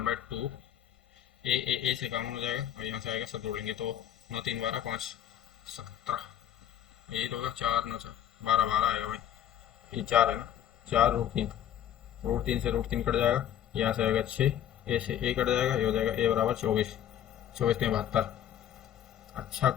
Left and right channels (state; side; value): quieter; right; 10.6 dB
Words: ए से कॉमन हो जाएगा, और यहाँ से आएगा, सब जोड़ लेंगे तो 9×3 = 12, 5 17, यही तो होगा, 4 9 12 आएगा भाई, ये 4 है ना, 4√3, √3 से √3 कट जाएगा, यहाँ से आएगा 6, ए से ए कट जाएगा, ये हो जाएगा ए बराबर 24, 24×72। अच्छा